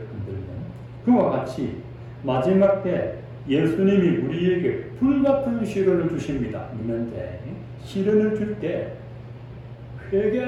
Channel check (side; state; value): both; identical; correlation 1.00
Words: 흔들면. 그와 같이 마지막 때 예수님이 우리에게 불같은 시련을 주십니다. 있는데 시련을 줄 때